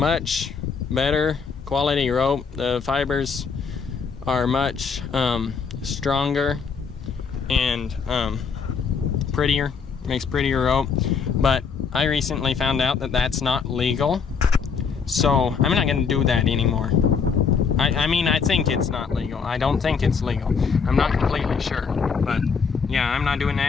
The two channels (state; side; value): quieter; right; 5.8 dB